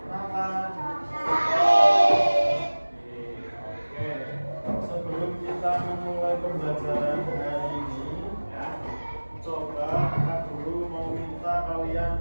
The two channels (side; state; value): both; inverted; correlation -1.00